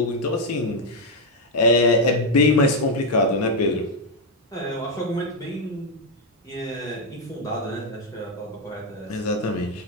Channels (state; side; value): normal; both; correlation 0.03